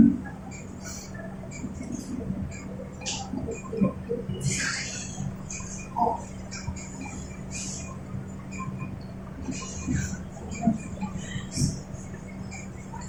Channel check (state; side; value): identical; both; correlation 1.00